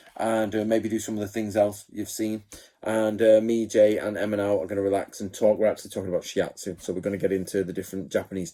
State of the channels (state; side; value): identical; both; correlation 1.00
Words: and maybe do some of the things else you've seen. And me, Jay, and Emma now are going to relax and talk. We're actually talking about Shiatsu, so we're going to get into the different Japanese